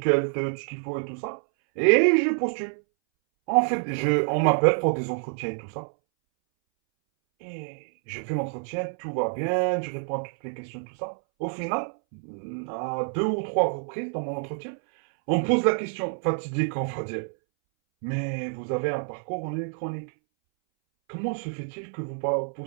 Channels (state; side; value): silent; left; 60 dB below the other